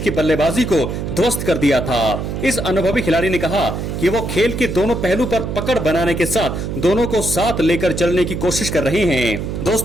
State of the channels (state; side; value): noise; right; hum, 4 dB below the sound